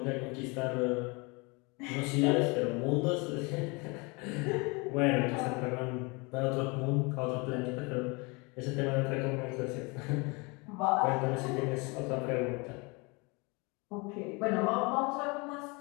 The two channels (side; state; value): right; quieter; 28.4 dB